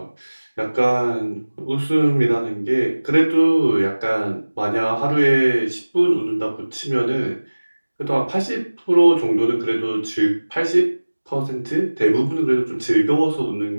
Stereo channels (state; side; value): inverted; both; correlation -1.00